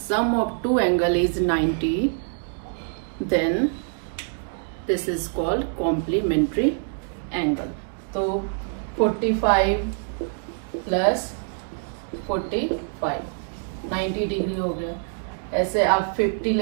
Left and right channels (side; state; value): left; silent; 61 dB below the other